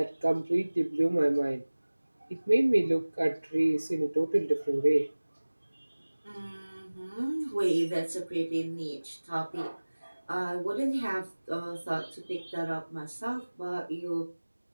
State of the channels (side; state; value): both; inverted; correlation -1.00